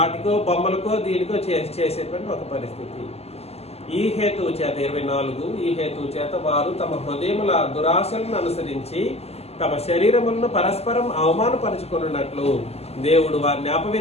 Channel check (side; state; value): right; late; 0.30 ms